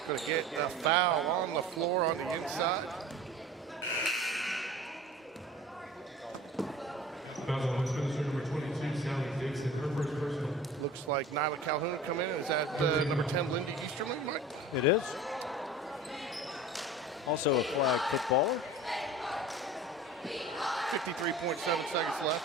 Gonna get a foul on the floor on the inside. Foul on Westminster, number 22, Sally Dixon, her first personal. Looks like Nyla Calhoun come in. Is that number 10, Lindy Easterling, Mike? It is. Also a flag footballer. 53.7 seconds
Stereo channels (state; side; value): normal; both; correlation 0.39